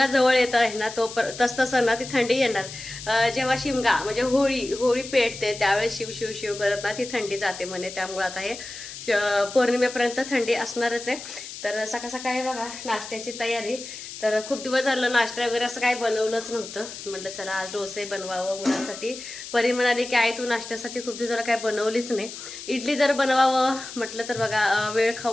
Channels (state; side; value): noise; left; hiss, 11 dB below the sound